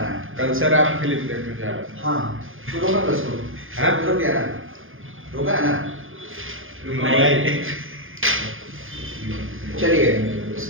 है कल सर आप फिल्म देखने जा रहे हैं हाँ तू रोका बस को हाँ? रुक गया ना रोका है ना नहीं चलिए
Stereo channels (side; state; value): left; late; 0.59 ms